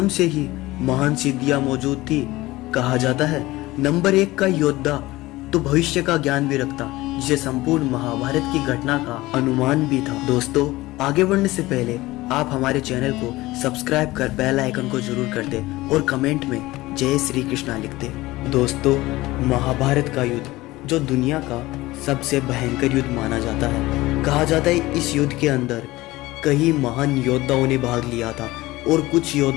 से ही महान सिद्धियां मौजूद थी। कहा जाता है नंबर 1 का योद्धा तो भविष्य का ज्ञान भी रखता, जिसे संपूर्ण महाभारत की घटना का अनुमान भी था। दोस्तों, आगे बढ़ने से पहले आप हमारे चैनल को सब्सक्राइब कर बेल आइकन को जरूर कर दे और कमेंट में जय श्री कृष्णा लिख दे। दोस्तों, महाभारत का युद्ध जो दुनिया का सबसे भयंकर युद्ध माना जाता है। कहा जाता है इस युद्ध के अंदर कई महान योद्धाओं ने भाग लिया था और कुछ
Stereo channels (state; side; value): quieter; right; 18.9 dB